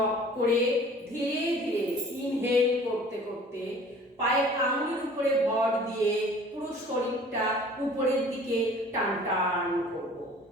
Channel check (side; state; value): both; normal; correlation 0.49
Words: করে ধীরে ধীরে ইনহেল করতে করতে পায়ের আঙুলের উপরে ভর দিয়ে পুরো শরীরটা উপরের দিকে টান টান করব।